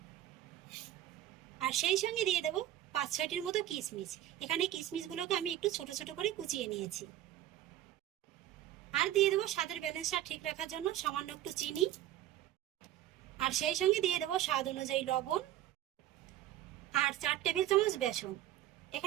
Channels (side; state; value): left; quieter; 12.9 dB